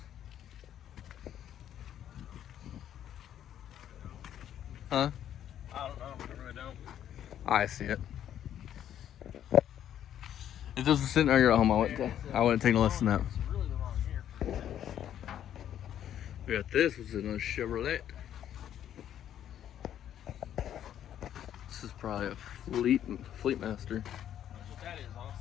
Huh? I don't know. I really don't. I see it. If this was sitting right here at home, I wouldn't take no less than that. It's really the wrong year for that. We got this, which is another Chevrolet. This is probably a Fleetmaster. That's what that is,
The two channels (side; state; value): right; quieter; 10.5 dB